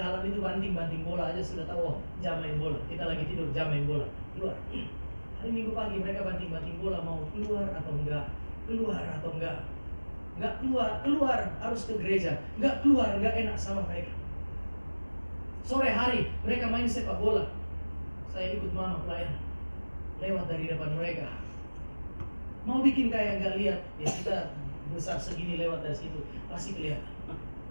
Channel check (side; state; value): both; inverted; correlation -1.00